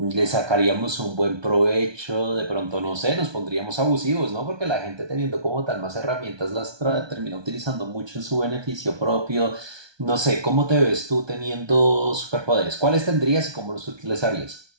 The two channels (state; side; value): late; left; 1.2 ms